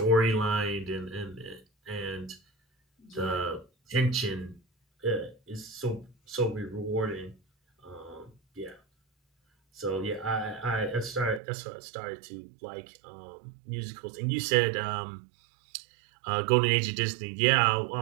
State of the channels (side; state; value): left; drops out; at 11.4 s